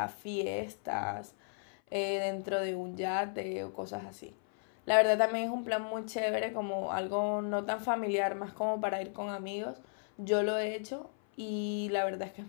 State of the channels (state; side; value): silent; right; 55 dB below the other